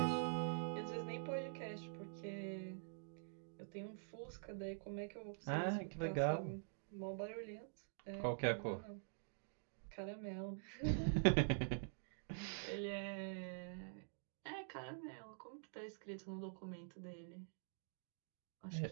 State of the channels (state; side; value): silent; left; digital silence